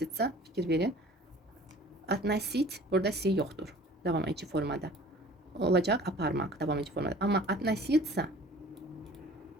fikir verin. Относить burada si yoxdur. Davam edici formada. Olacaq aparmaq davam edici formada. Amma относиться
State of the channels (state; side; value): normal; both; correlation 0.47